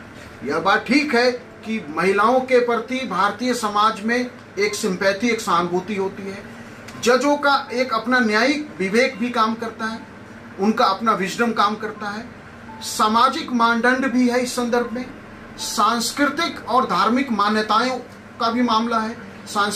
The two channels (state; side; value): identical; both; correlation 1.00